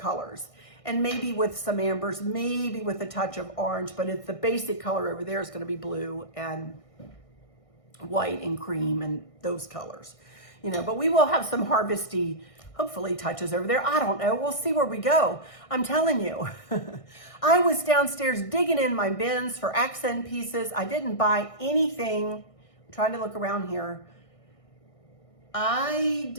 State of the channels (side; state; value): right; late; 1.6 ms